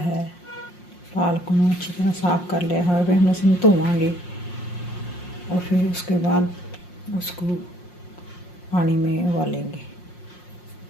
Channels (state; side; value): late; right; 5.6 ms